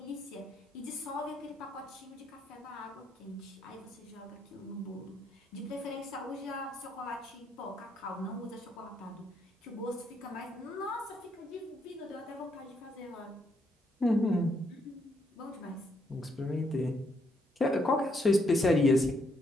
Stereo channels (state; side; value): normal; both; correlation 0.74